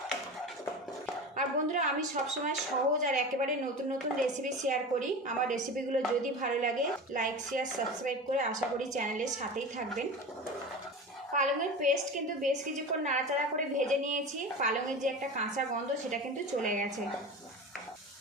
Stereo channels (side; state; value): both; normal; correlation 0.30